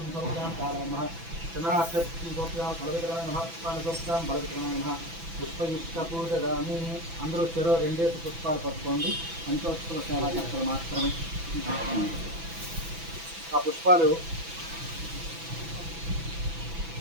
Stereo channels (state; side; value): late; left; 6.0 ms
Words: समर्पयामि कालाय नमः चन्द्रार्थे पुष्पं समर्पयामि बलवित्राय नमः पुष्पाणि समर्पयामि बलवित्राय नमः పుష్పయుష్ట పూజదామి అందరూ చెరో రెండేసి పుష్పాలు పట్టుకోండి పంచోత్సవ సేవా చక్రం మాత్రమే ఆ పుష్పాలు